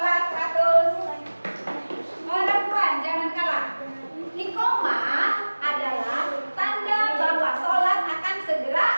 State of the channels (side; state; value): both; inverted; correlation -1.00